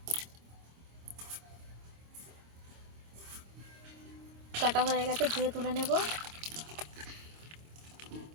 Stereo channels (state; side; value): late; left; 26 ms